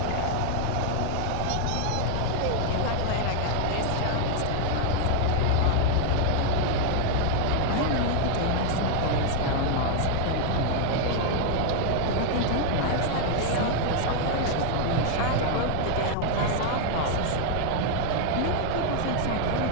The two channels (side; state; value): both; different; correlation 0.00